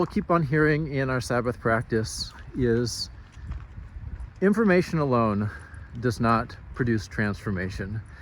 keep on hearing in our Sabbath practice is information alone does not produce transformation.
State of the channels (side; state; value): both; identical; correlation 1.00